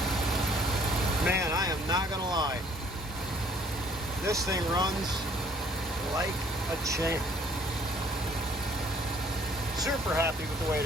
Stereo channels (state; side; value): normal; both; correlation 0.58